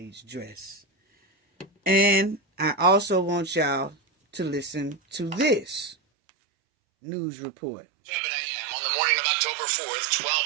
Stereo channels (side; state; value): left; drops out; at 6.0 s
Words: dress. And I also want y'all to listen to this news report. 7 a.m. on the morning of October 4th, 12